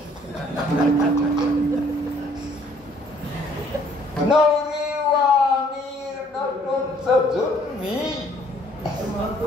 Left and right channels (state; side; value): normal; both; correlation 0.61